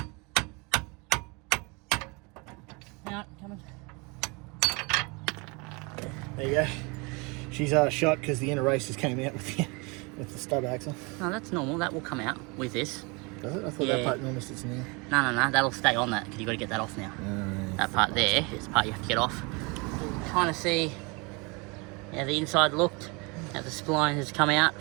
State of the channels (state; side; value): quieter; left; 28.9 dB